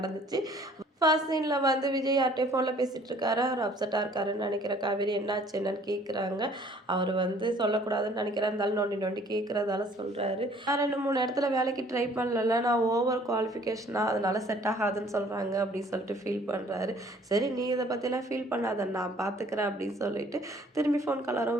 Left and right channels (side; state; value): both; normal; correlation 0.56